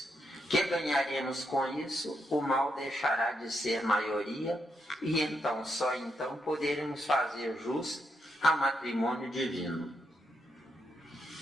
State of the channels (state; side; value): normal; both; correlation 0.80